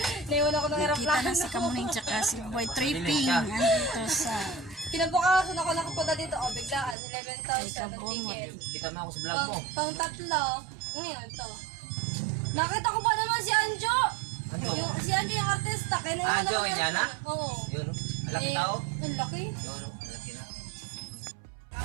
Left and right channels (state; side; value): drops out; left; at 7.0 s